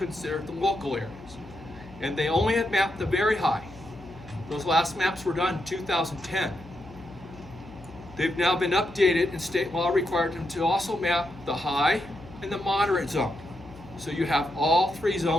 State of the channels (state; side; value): noise; left; hum, 20 dB below the sound